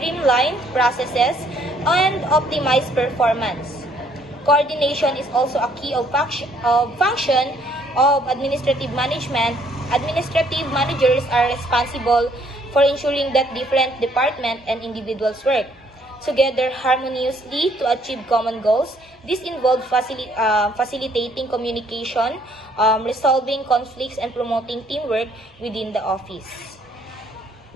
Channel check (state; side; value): normal; both; correlation 0.64